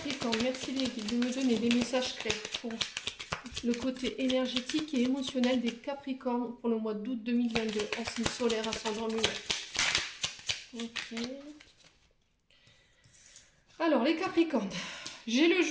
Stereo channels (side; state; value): both; identical; correlation 1.00